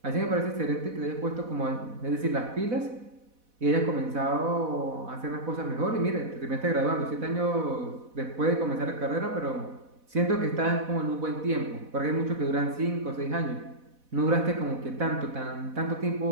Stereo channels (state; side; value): late; left; 4.1 ms